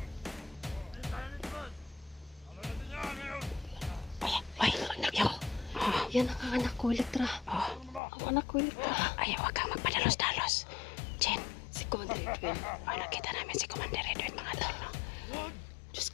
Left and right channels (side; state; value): right; drops out; at 8.0 s